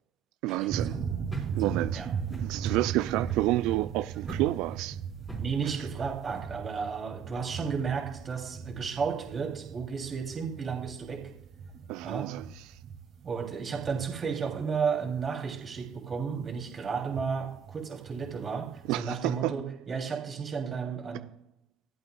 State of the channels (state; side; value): quieter; left; 7.9 dB